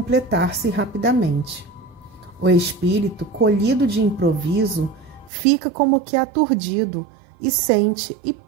rapidamente. O espírito, colhido de improviso, fica como que aturdido e sente e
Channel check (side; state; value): left; drops out; at 5.3 s